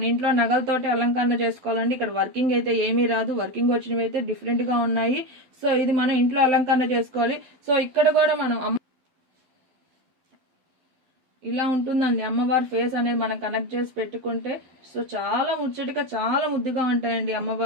ఇంట్లో నగలతోటి అలంకరణ చేసుకోవాలండి. ఇక్కడ వర్కింగ్ అయితే ఏమీ రాదు. వర్కింగ్ వచ్చినవి అయితే డిఫరెంట్ గా ఉన్నాయి. సో ఇది మనం ఇంట్లో అలంకరణ చేసుకోవాలి. సో ఇక్కడ కూడా మనం ఇలా ఉంటుందండి అమ్మవారి ఫేస్ అనేది మనం కనెక్ట్ చేసి పెట్టుకుంటే. సో చాలా ముచ్చటగా చాలా ముద్దుగా ఉంటాయండి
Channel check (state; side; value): late; left; 12 ms